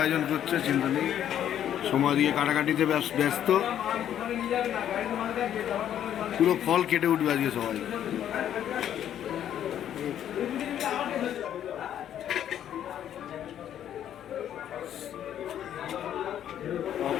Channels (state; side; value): quieter; right; 10.4 dB